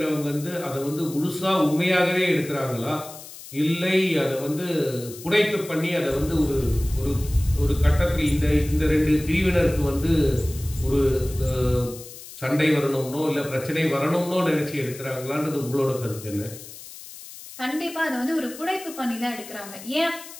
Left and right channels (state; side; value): noise; left; hiss, 15 dB below the sound